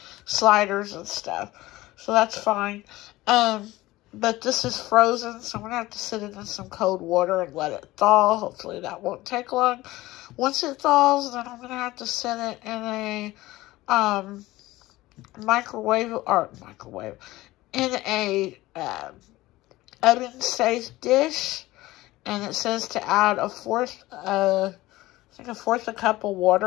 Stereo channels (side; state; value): right; quieter; 18.2 dB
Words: sliders and stuff. So that's fine. But this is frozen, so I'm going to have to sit it in some cold water and let it thaw. Hopefully that won't take long. Once it thaws, then I'm going to have to set it in a in a oven-safe dish. And it says to add a fourth a cup of